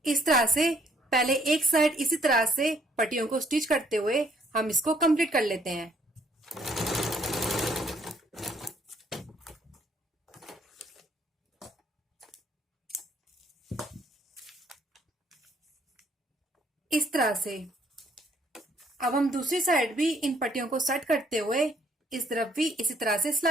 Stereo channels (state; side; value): normal; both; correlation 0.65